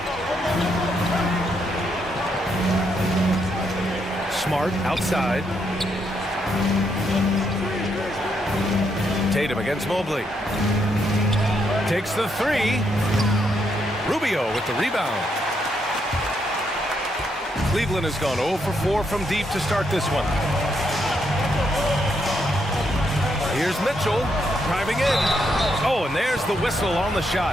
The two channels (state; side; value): normal; both; correlation 0.77